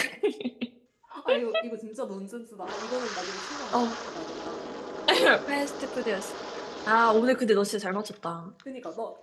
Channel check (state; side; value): identical; both; correlation 1.00